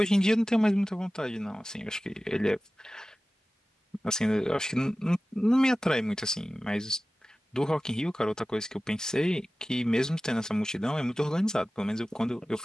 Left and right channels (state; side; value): normal; both; correlation 0.96